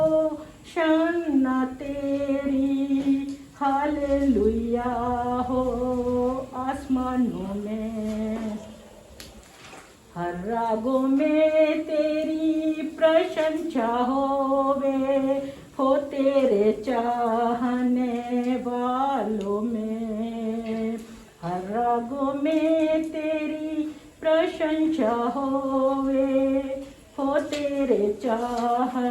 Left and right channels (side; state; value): both; identical; correlation 1.00